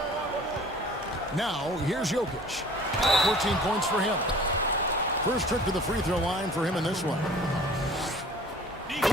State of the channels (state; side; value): normal; both; correlation 0.47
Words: Now, here's Jokic. 14 points for him. First trip to the free throw line for him in this one.